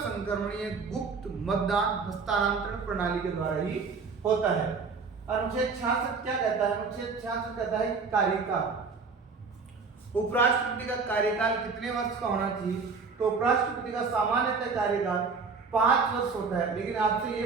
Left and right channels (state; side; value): quieter; left; 4.8 dB